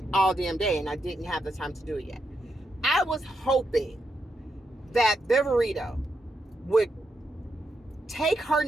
all damn day and I didn't have the time to do it yet. I was hoping that Viverito would take her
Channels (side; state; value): both; normal; correlation 0.83